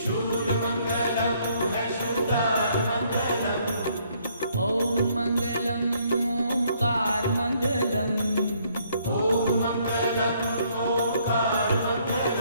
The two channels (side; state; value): both; inverted; correlation -0.67